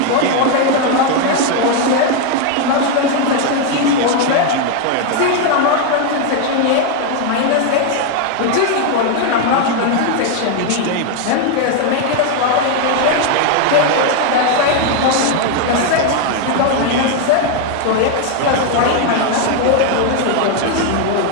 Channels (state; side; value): different; both; correlation 0.01